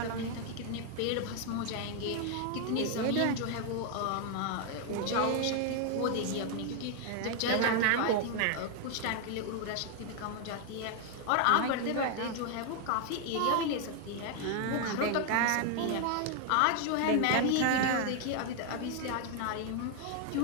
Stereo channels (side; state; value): both; different; correlation 0.00